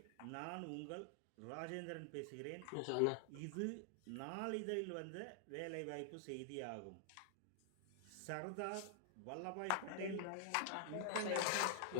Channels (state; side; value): different; both; correlation -0.01